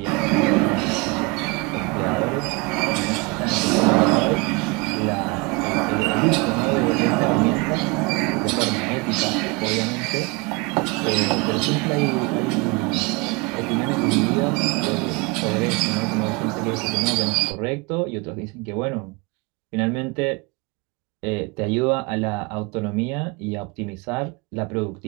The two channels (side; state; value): left; quieter; 26.9 dB